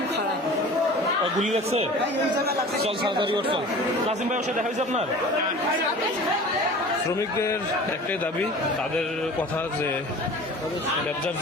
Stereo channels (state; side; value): normal; both; correlation 0.41